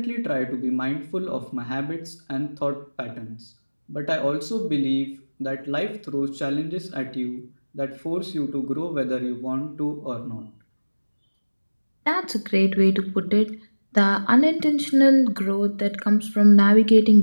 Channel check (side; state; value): both; inverted; correlation -1.00